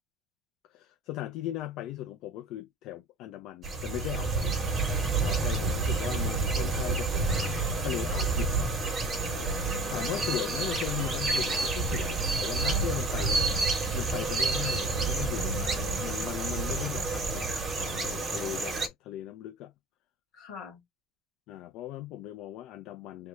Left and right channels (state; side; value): normal; both; correlation 0.41